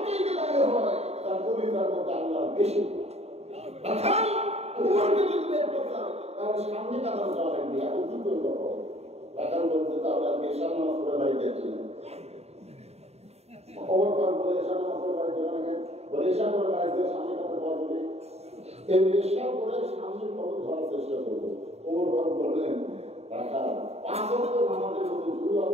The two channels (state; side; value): late; left; 0.30 ms